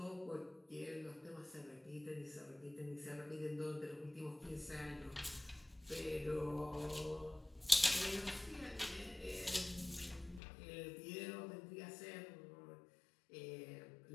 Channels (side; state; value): right; drops out; at 10.4 s